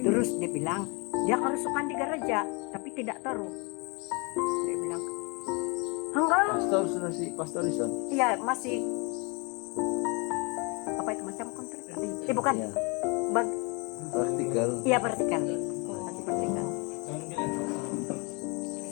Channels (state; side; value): quieter; right; 30.6 dB